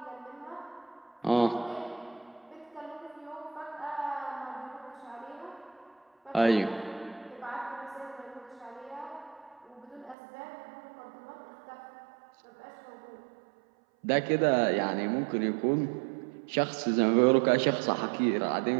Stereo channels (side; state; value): left; drops out; at 10.2 s